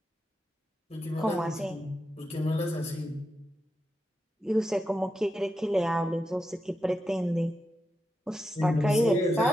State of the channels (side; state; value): both; normal; correlation 0.88